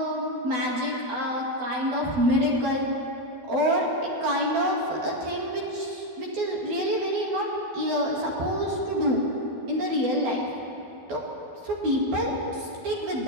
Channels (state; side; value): late; left; 12 ms